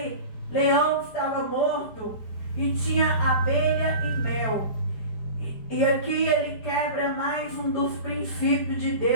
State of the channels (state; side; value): late; right; 4.9 ms